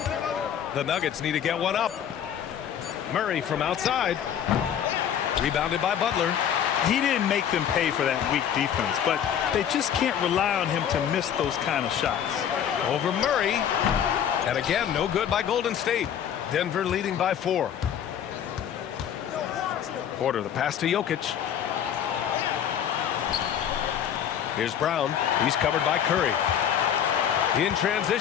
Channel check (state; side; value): quieter; right; 9.2 dB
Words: The Nuggets need to get one up. Murray from outside. Rebounded by Butler. He didn't make them pay for that weak defense, but they just can't rely on him to miss those kind of shots. Over Murray. And again, no good by Golden State. Denver leading by 4. Porter, the pass to Jokic. Here's Brown. He's covered by Curry. In